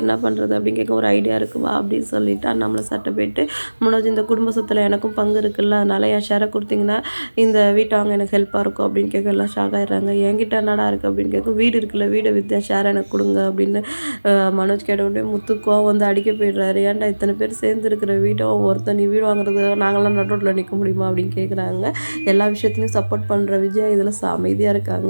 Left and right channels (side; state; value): both; inverted; correlation -1.00